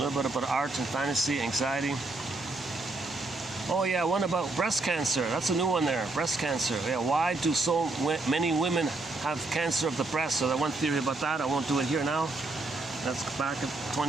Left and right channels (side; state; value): left; quieter; 3.2 dB